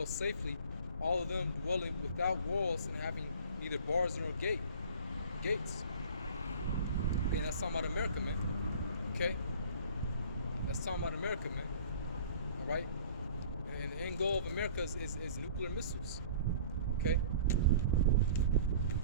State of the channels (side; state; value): both; inverted; correlation -0.46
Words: safely, all of them dwelling without walls and having neither bars nor gates. And that's talking about America, man. Okay? That's talking about America, man. All right? And the end goal of America is nuclear missiles. Okay?